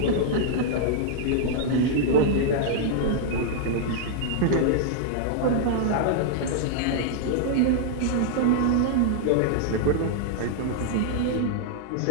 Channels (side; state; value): both; different; correlation -0.01